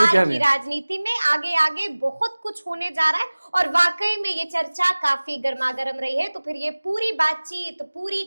की राजनीति में आगे आगे बहुत कुछ होने जा रहा है। और वाकई में ये चर्चा काफी गर्मागर्म रही है। तो फिर ये पूरी बातचीत, पूरी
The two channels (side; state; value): both; inverted; correlation -1.00